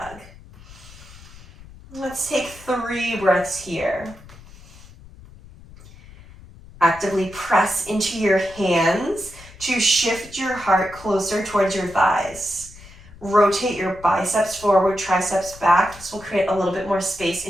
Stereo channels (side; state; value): left; noise; rumble, 20 dB below the sound